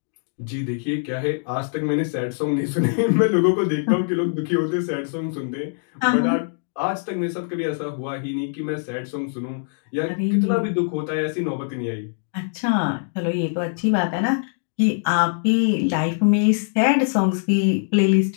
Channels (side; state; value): right; silent; digital silence